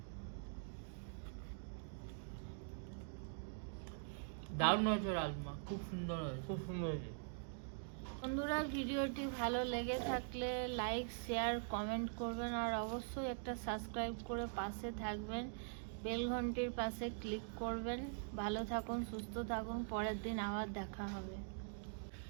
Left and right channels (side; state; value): left; silent; digital silence